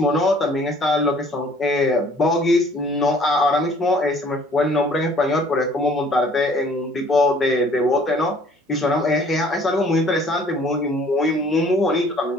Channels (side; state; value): both; normal; correlation 0.56